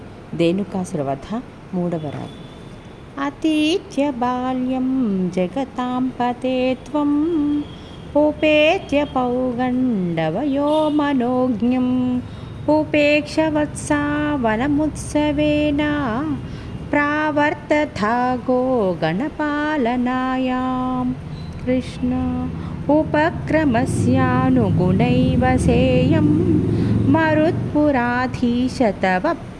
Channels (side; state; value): both; identical; correlation 1.00